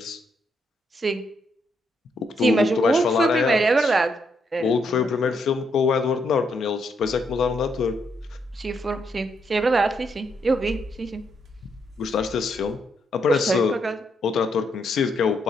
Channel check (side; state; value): both; normal; correlation 0.76